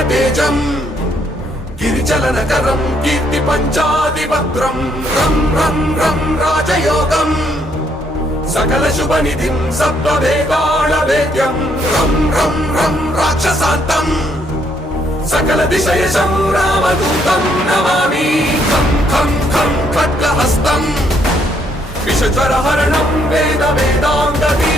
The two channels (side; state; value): both; normal; correlation 0.71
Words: గిరిచలనకరం కీర్తి పంచాదివక్త్రం రం రం రం రాజయోగం సకల శుభనిధిం సప్తవేదాళవేద్యం రం రం రం రాక్షసాంతం సకల దిశయశం రామదూతం నమామి ఖం ఖం ఖం ఖడ్గహస్తం విషజ్వరహరణం వేద వేదాంగ